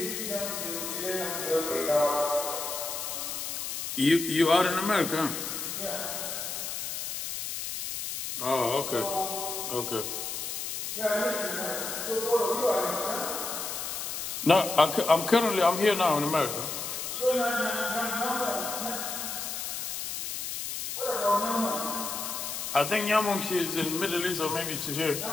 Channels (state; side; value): noise; left; hiss, 4 dB below the sound